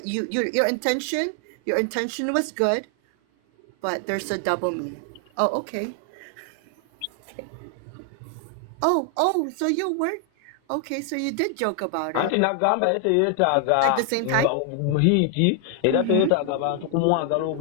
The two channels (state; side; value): different; both; correlation 0.00